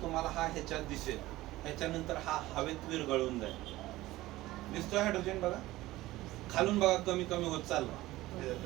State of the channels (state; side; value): quieter; left; 17.4 dB